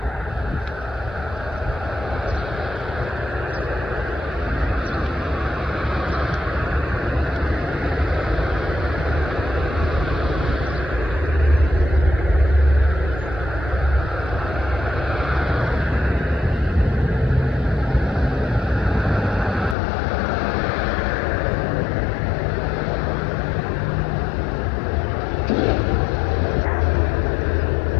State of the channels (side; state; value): right; drops out; at 19.8 s